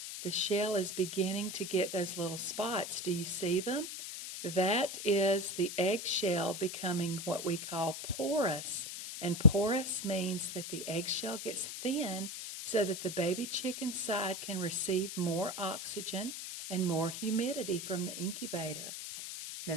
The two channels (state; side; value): noise; left; hiss, 7 dB below the sound